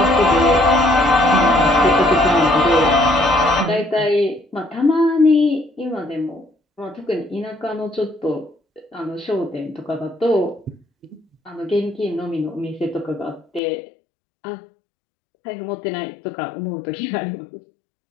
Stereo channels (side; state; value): right; drops out; at 13.6 s